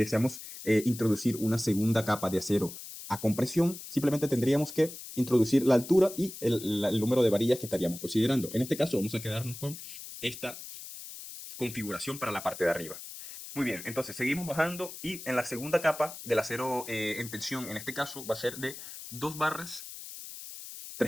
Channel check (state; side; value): noise; left; hiss, 12 dB below the sound